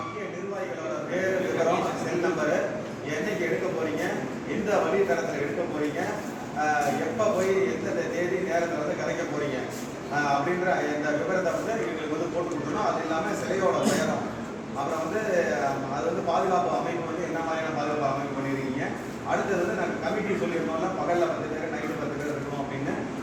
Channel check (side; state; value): both; identical; correlation 1.00